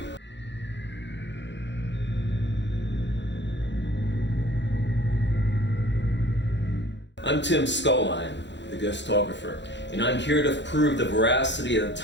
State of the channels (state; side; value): late; right; 0.52 ms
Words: I'm Tim Scullion, the Ghostographer, and I'm here to prove the veracity of the